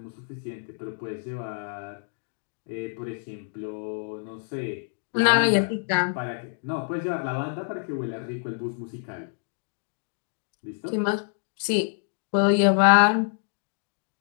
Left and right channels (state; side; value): silent; right; digital silence